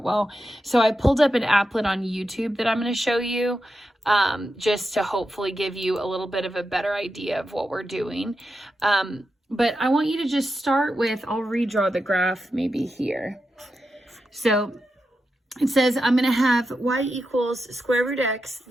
well. So I pulled up an applet on YouTube that I'm going to show you just to hopefully give you a little bit of a better idea of what we're doing. But I want you to just start with, I'll redraw the graph maybe here. So it says I'm going to have y equals square root x,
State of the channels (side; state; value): both; normal; correlation 0.88